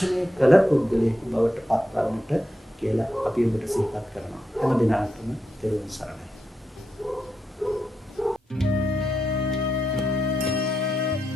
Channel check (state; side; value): normal; both; correlation 0.85